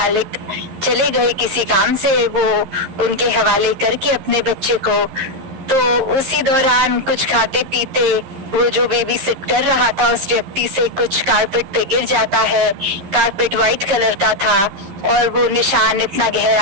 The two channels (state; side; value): late; left; 11 ms